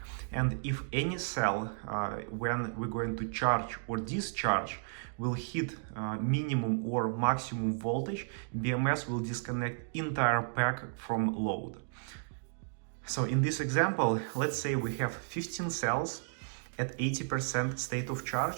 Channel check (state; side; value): silent; left; digital silence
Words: And if any cell, when we're going to charge or discharge, will hit minimum or maximum voltage, BMS will disconnect entire pack from load. So in this example, let's say we have 15 cells at 80% state of